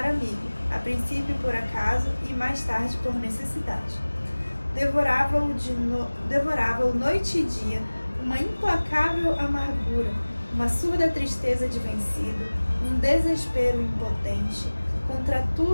amigo, a princípio por acaso e mais tarde por necessidade. Devorava-o noite e dia uma implacável amargura, uma surda tristeza de vencido, um desespero impotente contra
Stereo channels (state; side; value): inverted; both; correlation -1.00